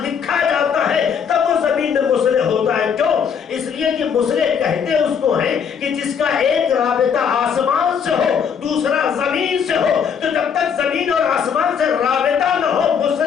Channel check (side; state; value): right; quieter; 7.1 dB